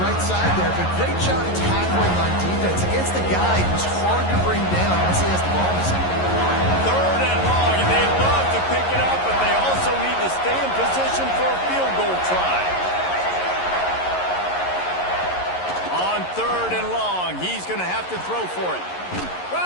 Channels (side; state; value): right; late; 11 ms